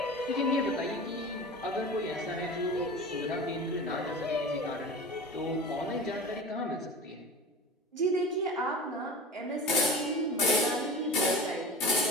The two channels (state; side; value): normal; both; correlation 0.34